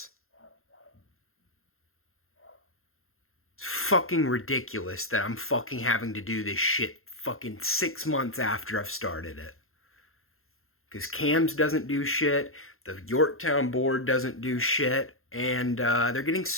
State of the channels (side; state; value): right; late; 0.61 ms